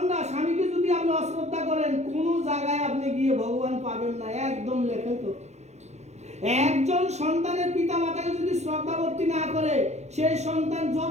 স্বামীকে যদি আপনি অশ্রদ্ধা করেন, কোনো জায়গায় আপনি গিয়ে ভগবান পাবেন না। একদম লেখে তো। একজন সন্তানের পিতা মাতাকে যদি শ্রদ্ধাভক্তি না করে, সেই সন্তান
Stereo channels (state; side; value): late; left; 0.32 ms